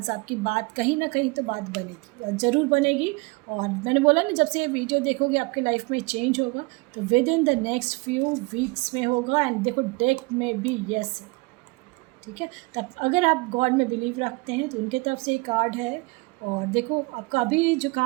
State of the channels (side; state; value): left; quieter; 26.3 dB